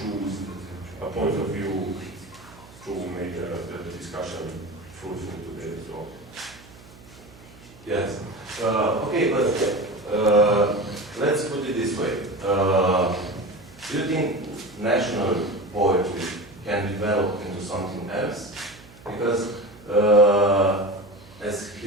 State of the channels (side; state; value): right; noise; hum, 22 dB below the sound